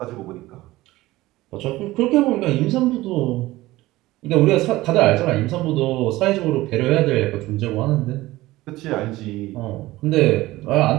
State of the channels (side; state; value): left; quieter; 17.9 dB